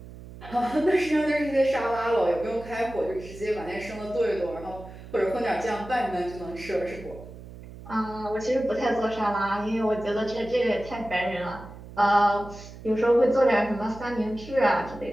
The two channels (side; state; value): right; noise; hum, 15 dB below the sound